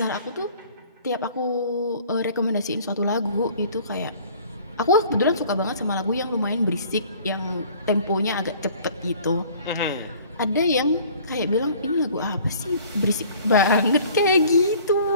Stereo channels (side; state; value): both; inverted; correlation -0.52